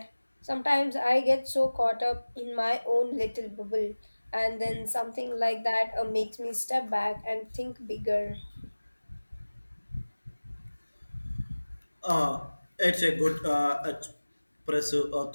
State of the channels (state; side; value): inverted; both; correlation -1.00